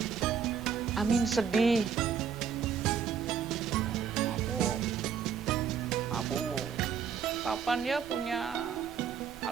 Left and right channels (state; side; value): quieter; left; 7.2 dB